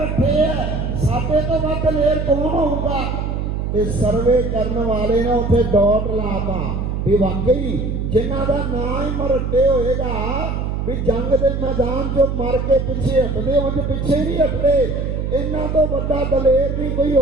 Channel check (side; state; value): right; noise; hum, 2 dB below the sound